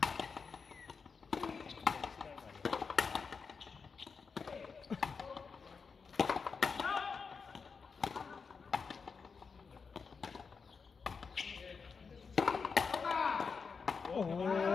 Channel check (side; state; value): right; quieter; 5.3 dB